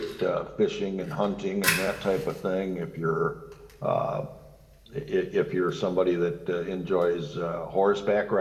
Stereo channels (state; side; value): identical; both; correlation 1.00